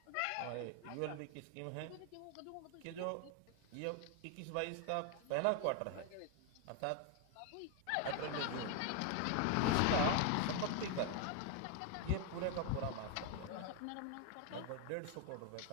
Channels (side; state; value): both; different; correlation 0.00